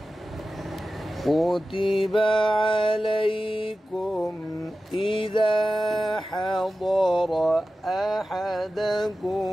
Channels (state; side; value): normal; both; correlation 0.94